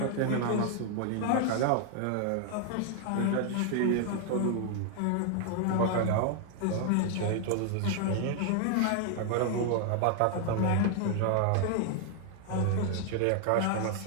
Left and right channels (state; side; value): different; both; correlation 0.00